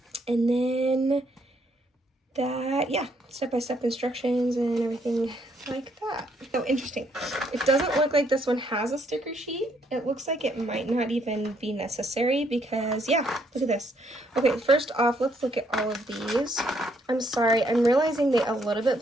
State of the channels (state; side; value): normal; both; correlation 0.71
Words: And then that, yeah, step-by-step instructions and everything like that. Oh, interesting. It doesn't look like this one has a sticker sheet. It looks like it might not even be necessary because, yeah, look at this. Okay, first off, let's look at all of these. I'm sorry, I'm realizing they a little bit